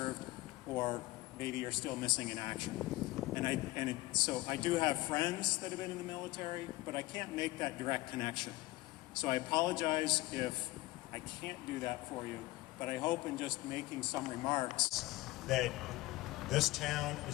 or maybe are still missing in action. So I do have friends that have been in the military, but I can't make that direct connection. So I apologize if I can't do that for you, but I hope in just making some remarks that this town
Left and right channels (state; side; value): quieter; right; 19.6 dB